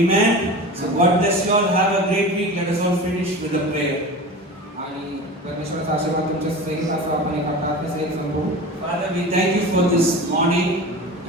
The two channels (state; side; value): normal; both; correlation 0.32